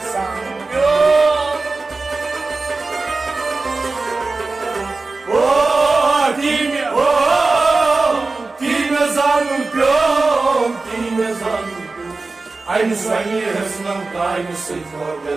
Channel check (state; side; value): quieter; left; 3.7 dB